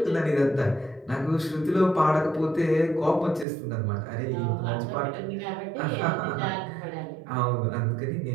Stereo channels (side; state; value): left; drops out; at 3.5 s